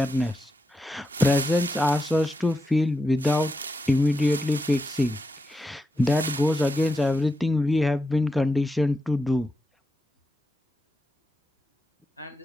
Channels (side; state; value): both; normal; correlation 0.87